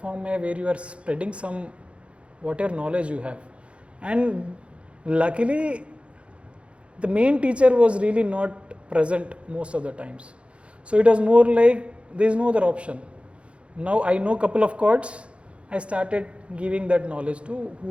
where you are spreading some whatever knowledge you have, and luckily the main teacher was really not present most of the times, so it was more like there is no other option. Now I know couple of chords, I started giving that knowledge to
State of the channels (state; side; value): late; left; 0.060 ms